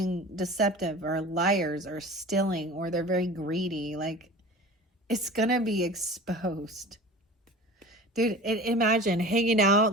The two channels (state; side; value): normal; both; correlation 0.38